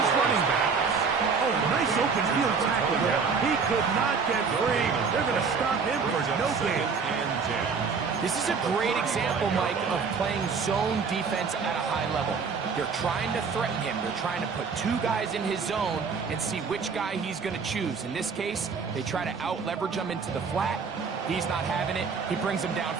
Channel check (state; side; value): quieter; left; 5.4 dB